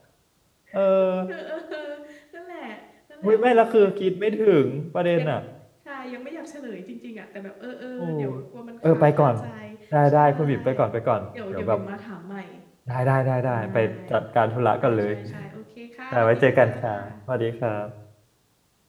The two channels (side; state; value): both; identical; correlation 1.00